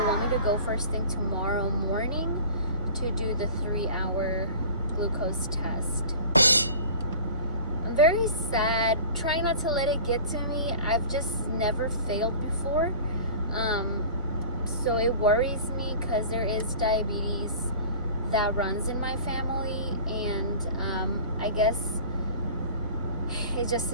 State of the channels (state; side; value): inverted; both; correlation -0.41